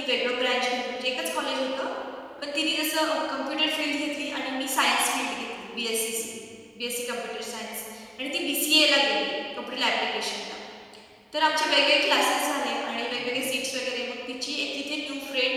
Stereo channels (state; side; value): identical; both; correlation 1.00